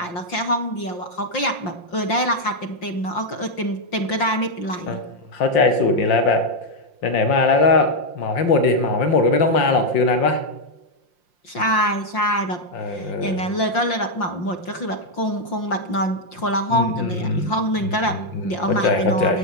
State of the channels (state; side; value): late; right; 5.7 ms